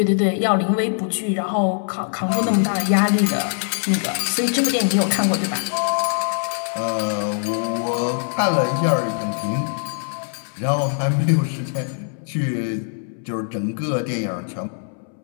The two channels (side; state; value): right; silent; 64 dB below the other